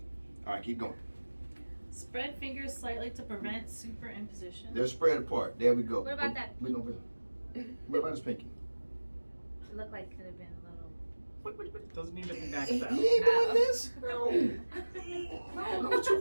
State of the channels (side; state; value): both; inverted; correlation -1.00